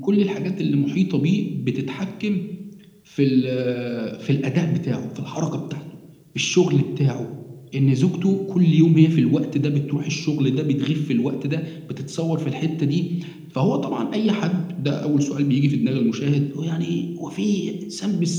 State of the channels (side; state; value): both; identical; correlation 1.00